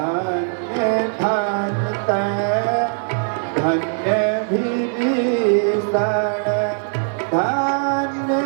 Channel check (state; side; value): silent; left; digital silence